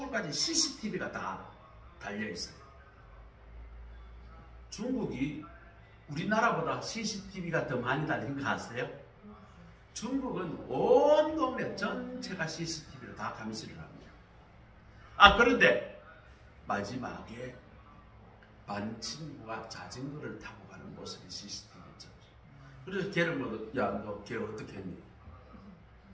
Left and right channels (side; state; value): both; identical; correlation 1.00